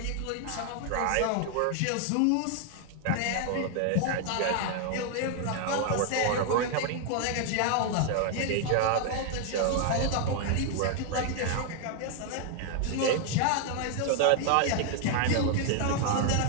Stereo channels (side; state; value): both; different; correlation 0.00